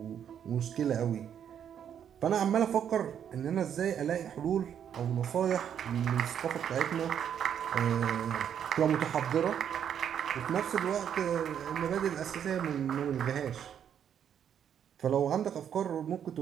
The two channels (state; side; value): quieter; left; 8.8 dB